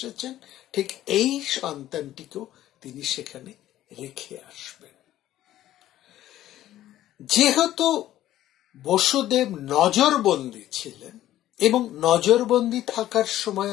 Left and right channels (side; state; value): right; quieter; 13.4 dB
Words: ঠিক এই সন্তানটিকেও তিনি সেখানে রেখে আসবেন। যেহেতু বসুদেব নজরবন্দী ছিলেন, এবং নজরবন্দী থাকার সময়